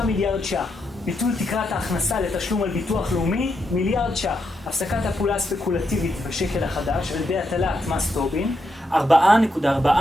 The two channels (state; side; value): normal; both; correlation 0.82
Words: ש"ח. ביטול תקרת ההכנסה לתשלום על ביטוח לאומי, מיליארד ש"ח. הפסקת הפעולה הספקולטיבית בשקל החדש על ידי הטלת מס טובין,